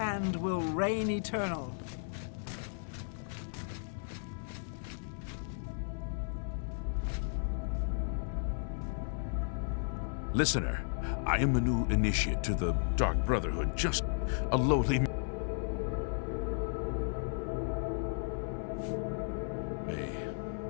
will reign eternal. Listener, I am a new initiate to the Dark Brotherhood, just a lowly...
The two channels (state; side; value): silent; right; 55 dB below the other